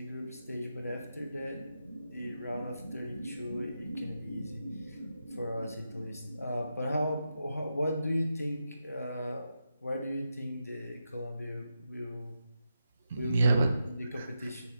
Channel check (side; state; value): both; inverted; correlation -0.87